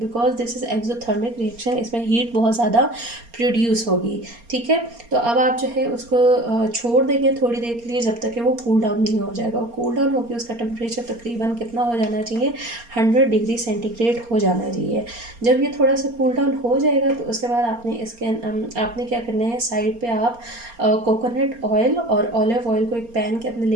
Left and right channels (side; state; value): left; late; 4.3 ms